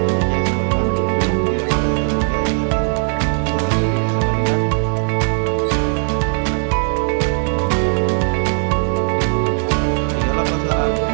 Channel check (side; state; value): left; silent; 56 dB below the other